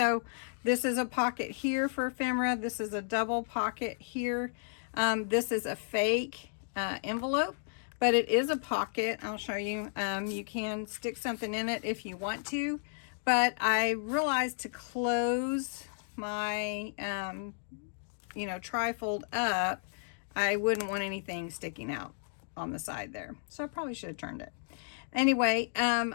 this is a pocket here for ephemera. This is a double pocket here. This is a fake envelope, but it is a pocket. I'll show you. You can stick something in it if you want to, but I realized to close my you know, tri-fold up, I wouldn't want anything sticking out on the side there, so I probably should have turned it. Anyway,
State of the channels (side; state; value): right; silent; digital silence